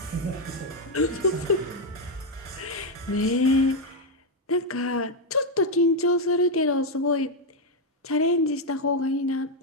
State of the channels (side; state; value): both; normal; correlation 0.03